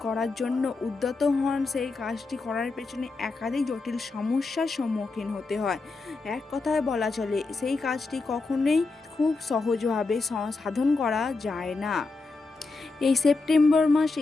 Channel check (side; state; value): right; quieter; 3.8 dB